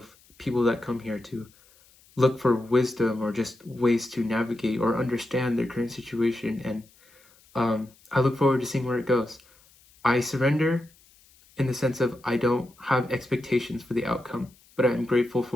people that come here to look for wisdom or just ways to navigate or understand their current situation. And I look forward to seeing where it goes. I surrender in the sense of I don't have expectations for the outcome, but I'm grateful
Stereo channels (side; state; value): left; noise; hiss, 29 dB below the sound